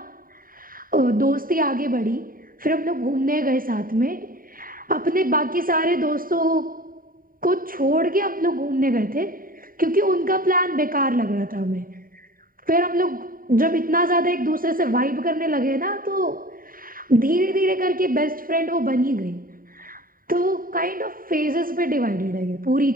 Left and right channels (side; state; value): left; late; 0.41 ms